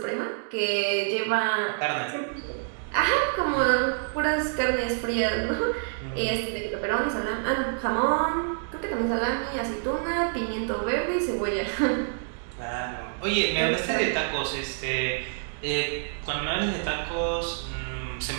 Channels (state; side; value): silent; left; digital silence